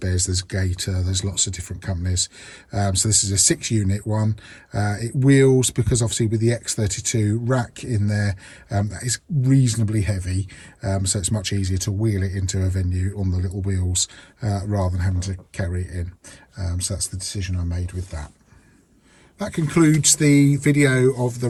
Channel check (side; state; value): both; identical; correlation 1.00